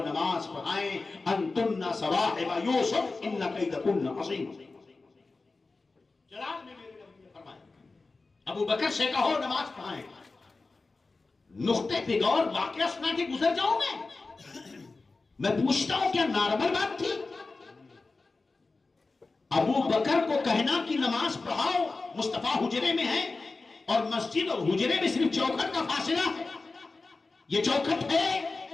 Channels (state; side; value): quieter; right; 3.7 dB